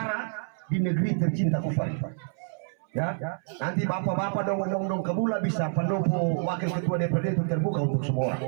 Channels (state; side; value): silent; left; 60 dB below the other